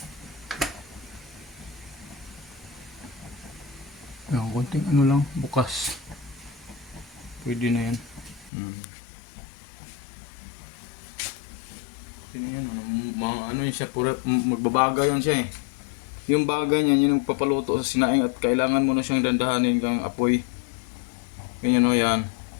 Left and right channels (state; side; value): drops out; right; at 8.5 s